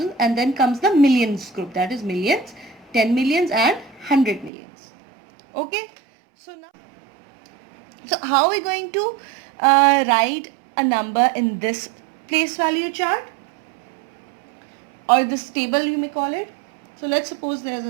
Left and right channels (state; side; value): drops out; left; at 4.5 s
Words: and then comes the millions group, that is millions, 10 millions and 100 millions. Okay, so how are we going to write a number in this place value chart, or this table you may call it? So let's suppose there's